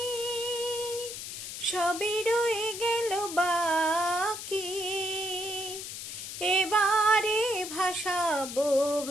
সবই রয়ে গেল বাকি এবারে ভাসাবো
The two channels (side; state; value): left; noise; hiss, 8 dB below the sound